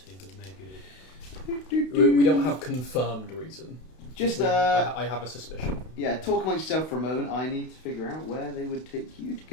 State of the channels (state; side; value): late; right; 32 ms